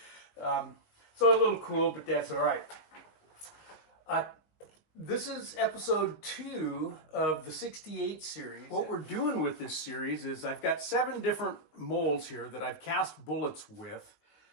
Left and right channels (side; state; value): right; late; 19 ms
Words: So a little cool, but that's all right. This is episode 2 of the 68 series. What we're doing with this series is I've got 7 different molds here that I've cast bullets with